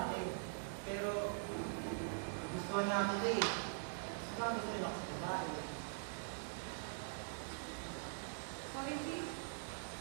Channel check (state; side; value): silent; left; digital silence